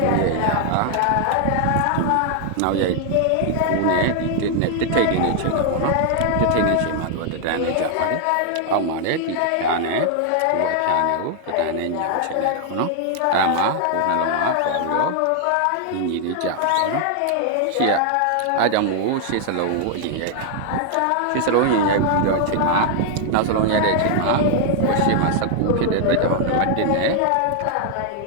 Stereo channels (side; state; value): both; different; correlation 0.00